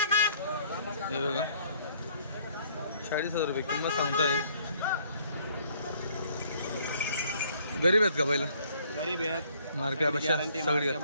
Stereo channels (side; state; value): both; inverted; correlation -0.61